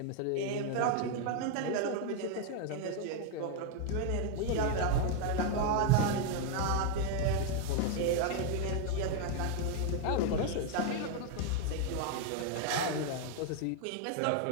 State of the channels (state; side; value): different; both; correlation 0.01